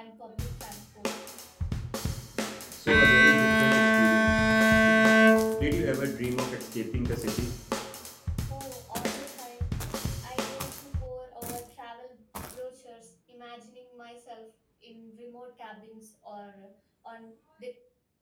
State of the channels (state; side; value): identical; both; correlation 1.00